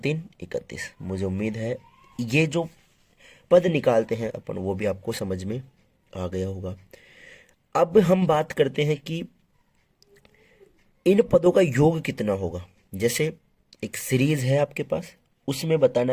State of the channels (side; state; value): both; identical; correlation 1.00